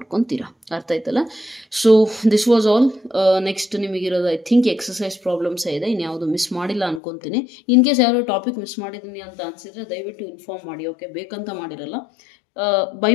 ಅರ್ಥ ಆಯ್ತಲ್ಲ. So this was all. Next ನಿಮಗಿರೋದು ಐ ಥಿಂಕ್ ಎಕ್ಸಸೈಸ್ ಪ್ರಾಬ್ಲಮ್ಸ್ ಇದೆ, ಇನ್ಯಾವುದು ಮಿಸ್ ಮಾಡಿಲ್ಲ ಅನ್ಕೊತೀನಿ. ಇನ್ ಕೇಸ್ ಯಾರೋ ಟಾಪಿಕ್ ಮಿಸ್ ಮಾಡಿದ್ದೀನಿ ಅಂತ ಅನ್ಸಿದ್ರೆ ದಯವಿಟ್ಟು ಇನ್ಫಾರ್ಮ್ ಮಾಡಿ. ಓಕೆ, ಬೇಕಂತ ಮಾಡಿರಲ್ಲ, ಬೈ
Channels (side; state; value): right; drops out; at 7.0 s